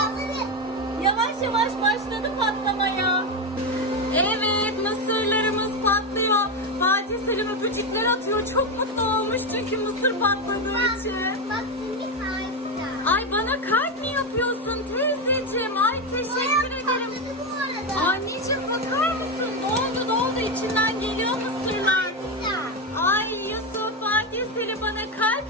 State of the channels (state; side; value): normal; both; correlation 0.11